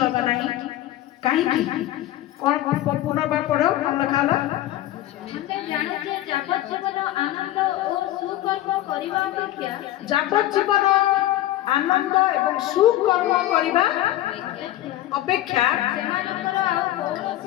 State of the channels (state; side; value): quieter; right; 14.4 dB